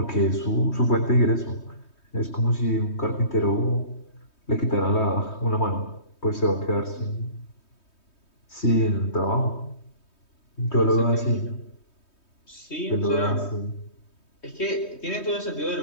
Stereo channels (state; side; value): late; right; 3.2 ms